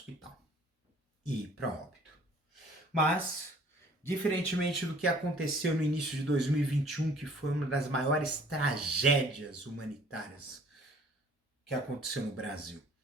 e ir para óbito. Mas, diferentemente do que aconteceu no início de 2021, que foi uma das maiores tragédias humanitárias que aconteceu no Brasil,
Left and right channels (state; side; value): normal; both; correlation 0.55